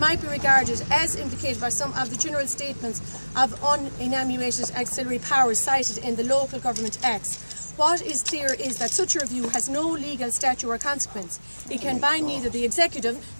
be regarded as implicated by some of the general statements of unenumerated auxiliary powers cited in the Local Government Acts. What is clear is that such a review has no legal statute or consequence. It can bind neither the executive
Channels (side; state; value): both; inverted; correlation -1.00